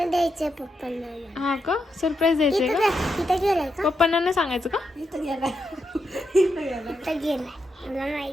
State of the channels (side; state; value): both; normal; correlation 0.83